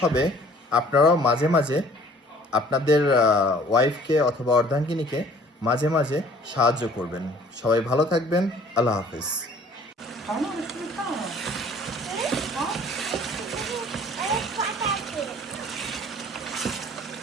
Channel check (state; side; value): normal; both; correlation 0.53